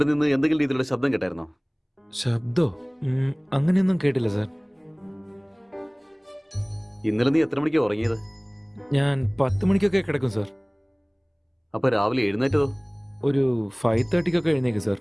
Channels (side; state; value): both; identical; correlation 1.00